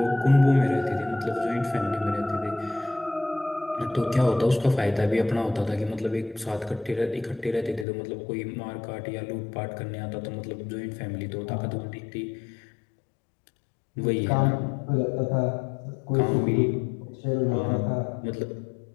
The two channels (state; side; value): drops out; right; at 7.9 s